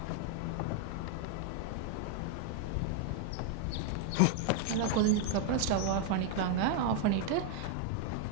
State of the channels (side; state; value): both; different; correlation 0.00